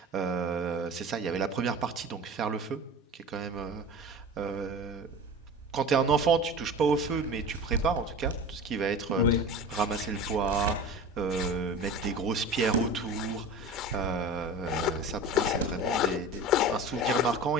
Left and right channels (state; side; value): normal; both; correlation 0.34